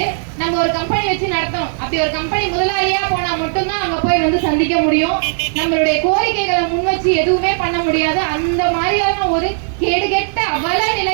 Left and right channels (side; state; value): left; silent; digital silence